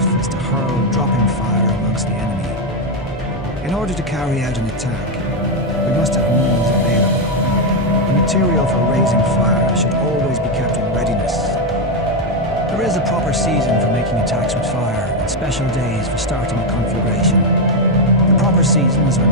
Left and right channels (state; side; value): normal; both; correlation 0.04